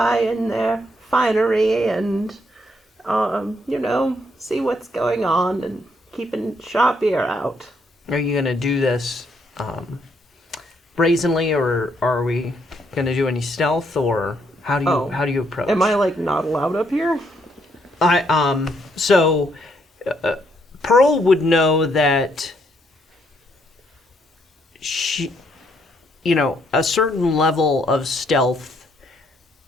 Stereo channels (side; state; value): both; normal; correlation 0.72